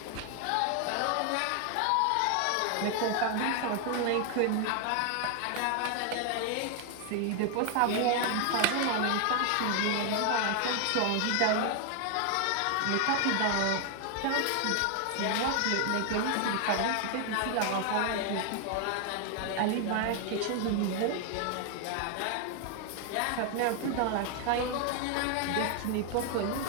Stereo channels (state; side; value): different; both; correlation 0.00